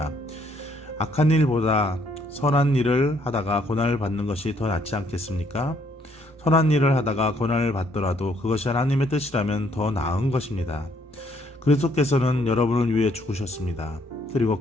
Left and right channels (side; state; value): both; normal; correlation 0.68